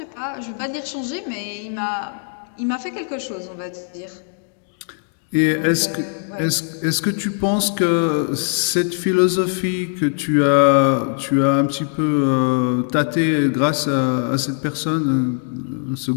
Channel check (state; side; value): silent; right; 65 dB below the other